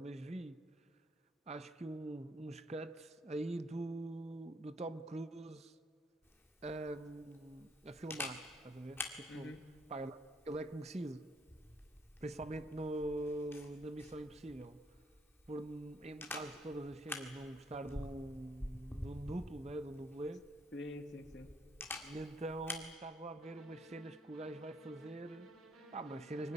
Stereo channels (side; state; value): both; normal; correlation 0.69